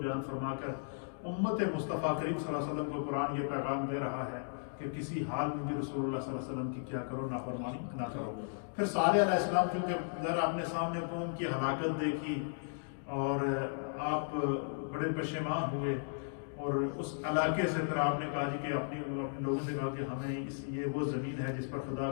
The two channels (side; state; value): right; silent; digital silence